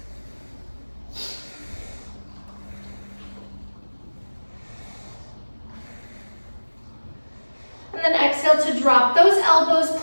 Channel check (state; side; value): inverted; both; correlation -1.00